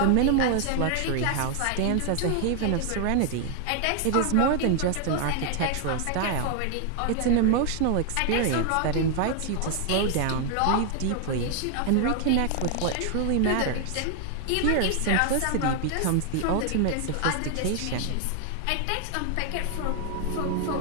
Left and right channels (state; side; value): different; both; correlation 0.00